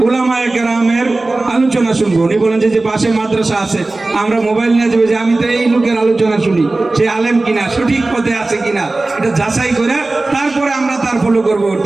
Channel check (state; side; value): quieter; left; 3.1 dB